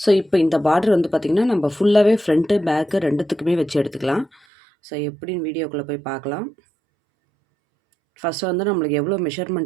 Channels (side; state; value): left; drops out; at 4.4 s